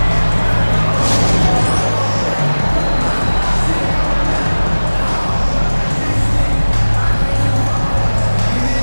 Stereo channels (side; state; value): both; inverted; correlation -1.00